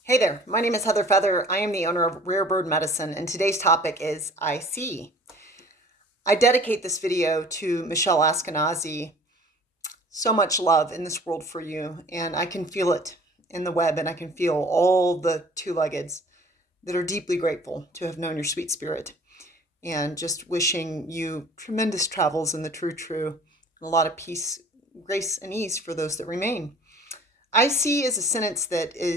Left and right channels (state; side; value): normal; both; correlation 0.48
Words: Hey there, my name is Heather Feather. I am the owner of Rare Bird Medicine, and today's topic is I see. I dedicate this video to Michelle Askenazi. So much love in this world for you, and I can feel it in the web, and I can feel all the two-leggeds that are deeply grateful to have known your sweet spirit, and just wishing you tremendous travels in the true, and a lot of peace, grace, and ease for those that remain. I see is a sentence that